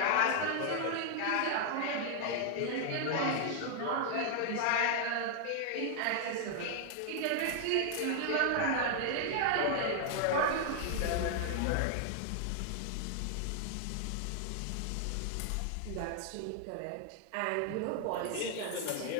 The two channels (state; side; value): different; both; correlation 0.00